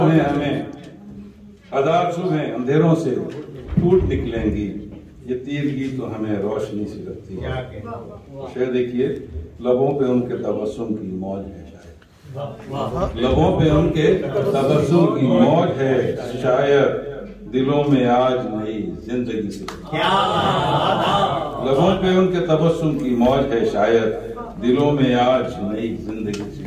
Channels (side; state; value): both; identical; correlation 1.00